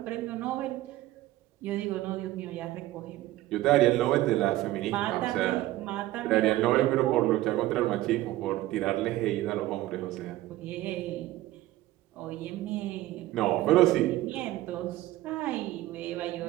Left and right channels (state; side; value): quieter; left; 16.1 dB